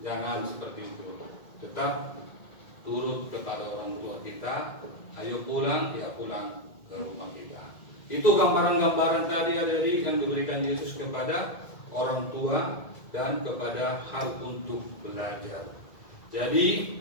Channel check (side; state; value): right; late; 2.0 ms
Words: Jangan seperti itu. Tetap turut kepada orang tua kita. Ayo pulang, ya pulang ke rumah kita. Itu gambaran-gambaran tadi adik-adik yang diberikan Yesus kepada orang tua dan kepada hal untuk belajar. Jadi